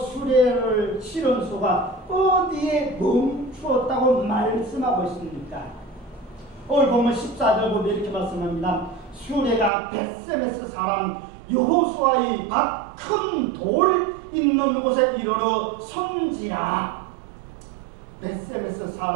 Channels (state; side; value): drops out; left; at 9.7 s